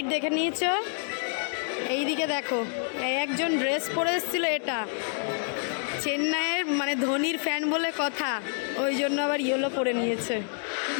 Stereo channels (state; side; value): silent; right; 59 dB below the other